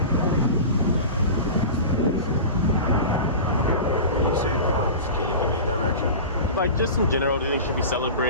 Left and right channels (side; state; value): both; inverted; correlation -0.31